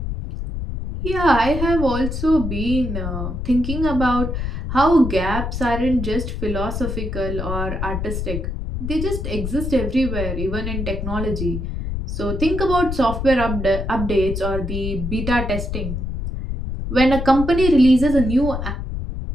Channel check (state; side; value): noise; left; rumble, 4 dB below the sound